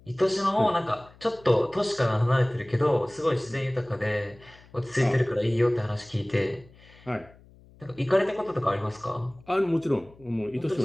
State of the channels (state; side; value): noise; left; hum, 25 dB below the sound